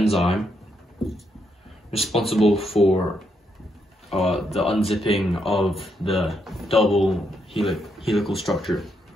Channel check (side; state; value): both; normal; correlation 0.78